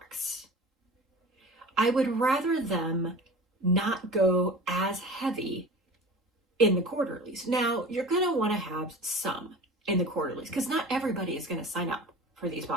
I would rather them not go as heavy in the quarterlies. Now, you're going to want to have some in the quarterlies because not everybody is going to sign up for these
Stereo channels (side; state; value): both; normal; correlation 0.36